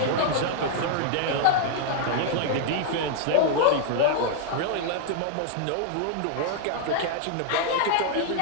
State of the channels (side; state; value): both; different; correlation -0.01